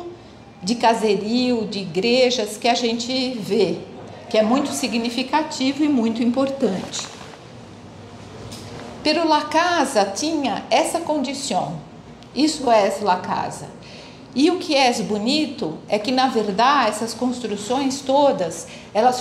de caserio, de igrejas que a gente vê, que é muito significativo e muito importante. Pero La Casa tinha essa condição, isso é La Casa. E o que é bonito é que, na verdade, essas construções todas, elas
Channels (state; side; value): identical; both; correlation 1.00